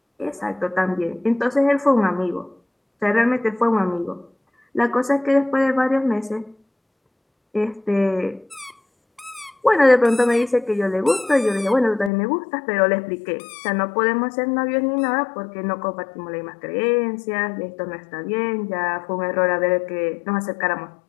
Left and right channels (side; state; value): right; drops out; at 12.1 s